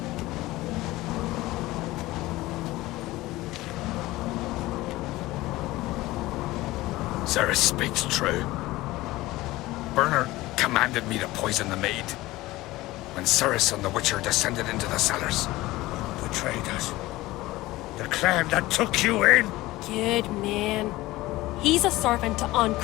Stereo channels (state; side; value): quieter; right; 18.4 dB